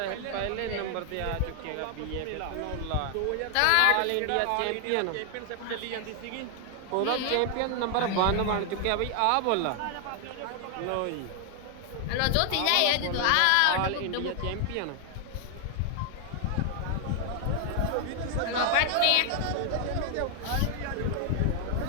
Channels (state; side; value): different; both; correlation 0.00